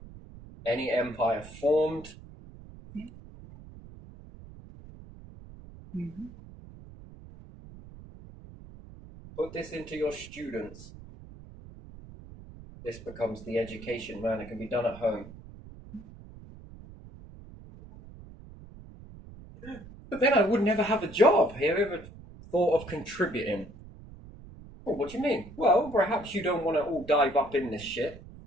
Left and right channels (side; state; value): right; noise; rumble, 17 dB below the sound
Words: any empire formed. Put this into your students. This becomes the education, man. It can be done at home. But then I would never have a job. Have you ever thought of contributing? Well, what do you mean? Well, perhaps you don't want to all dive up in this shit.